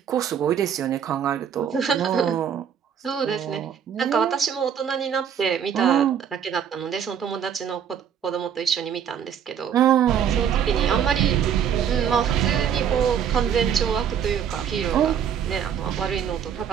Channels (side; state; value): left; quieter; 8.3 dB